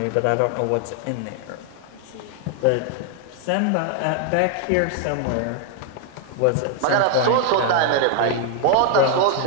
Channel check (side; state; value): both; different; correlation 0.00